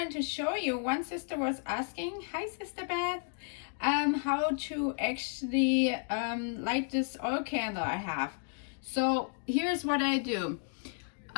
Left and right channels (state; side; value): silent; right; 56 dB below the other